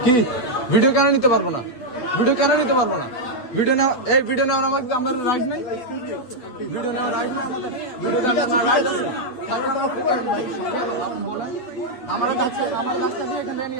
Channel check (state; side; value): late; right; 8.0 ms